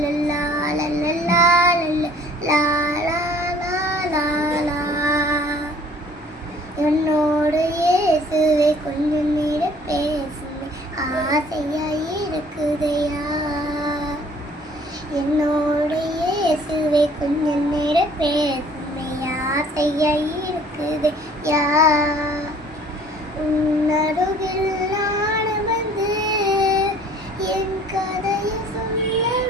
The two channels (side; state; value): both; normal; correlation 0.54